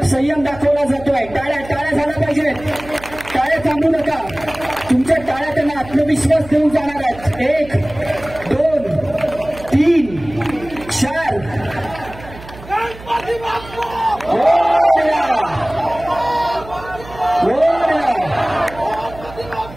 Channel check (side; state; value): right; noise; hum, 17 dB below the sound